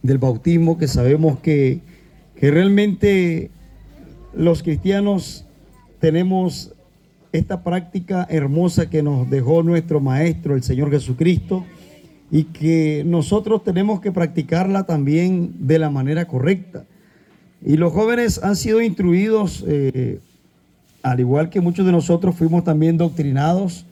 del bautismo, que sabemos que realmente los cristianos tenemos esta práctica hermosa que nos dejó nuestro Maestro, el Señor Jesucristo, y que nosotros tenemos que practicarla también de la manera correcta. Y los jóvenes han sido instruidos, al igual que muchos de nosotros fuimos también doctrinados,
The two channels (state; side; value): identical; both; correlation 1.00